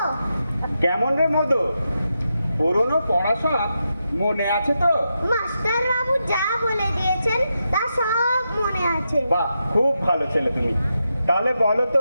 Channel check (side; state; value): both; inverted; correlation -0.86